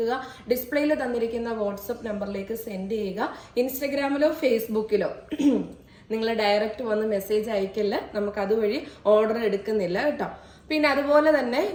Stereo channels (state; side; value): identical; both; correlation 1.00